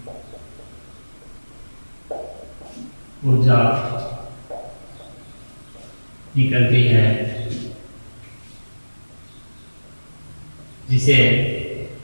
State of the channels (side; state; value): both; inverted; correlation -1.00